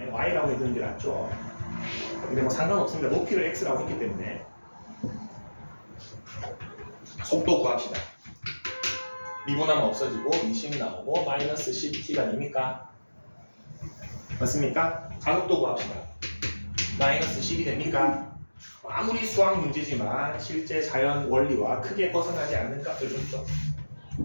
y라고 해두는 게 낫죠. 근데 뭐 상관없습니다. 높이를 x라고 했기 때문에. 속도 구합시다. 미분하면 없어지고 20 나오고 마이너스 10t가 됩니까? 맞습니까? 가속도 구합시다. 마이너스 10이 됩니까? 아무리 수학 문제지만 실제 자연 원리와 크게 벗어나지 않는 값을 줬죠.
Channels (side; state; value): both; inverted; correlation -1.00